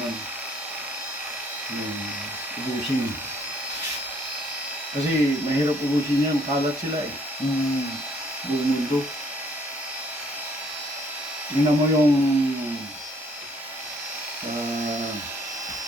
yun. Yung ubusin. Kasi mahirap ubusin yan, kalat sila eh. Buong mundo. Tingnan mo yung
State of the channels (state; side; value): normal; both; correlation 0.64